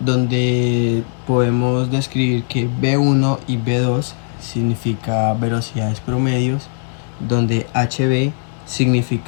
podemos describir que B1 y B2 significa velocidades promedios, donde HB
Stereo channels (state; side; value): silent; right; 67 dB below the other